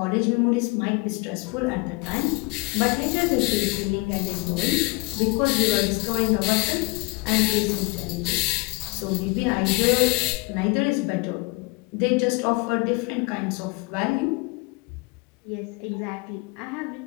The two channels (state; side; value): quieter; right; 27.3 dB